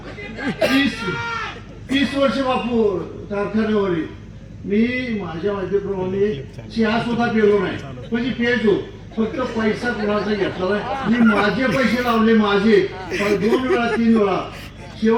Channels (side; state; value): both; identical; correlation 1.00